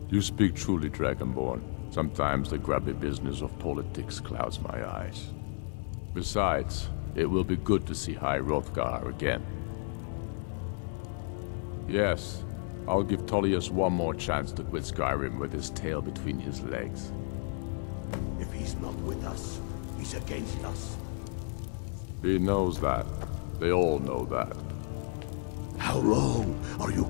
You speak truly, Dragonborn. Sometimes the grubby business of politics clouds my eyes. Besides, it will be good to see High Hrothgar again. Yes, I'll give Tullius one more chance to quit Skyrim with his tail between his legs. If he's not with us, he's against us. He knows that. They all know that. How long are you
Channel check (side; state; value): right; silent; 56 dB below the other